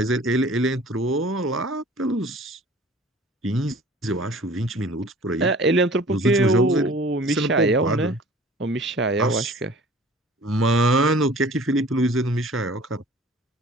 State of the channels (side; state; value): both; normal; correlation 0.48